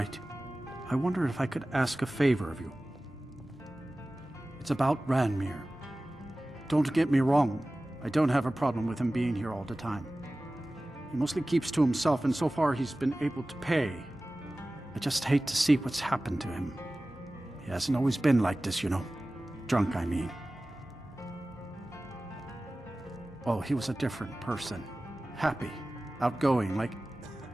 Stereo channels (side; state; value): both; normal; correlation 0.97